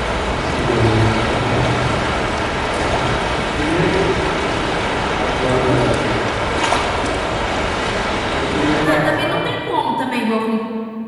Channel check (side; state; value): both; identical; correlation 1.00